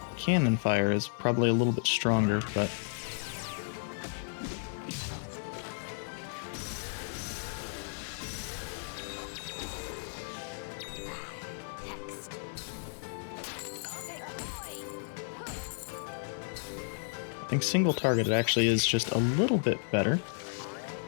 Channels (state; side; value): silent; right; 56 dB below the other